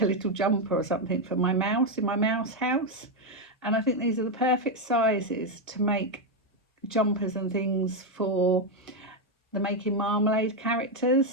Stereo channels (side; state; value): both; normal; correlation 0.04